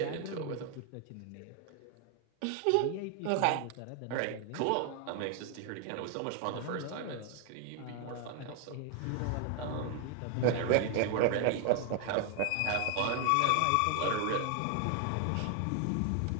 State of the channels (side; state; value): both; different; correlation 0.00